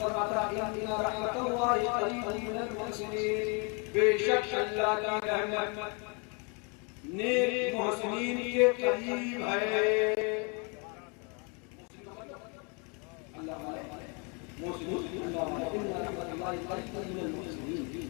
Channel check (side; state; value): right; quieter; 33.6 dB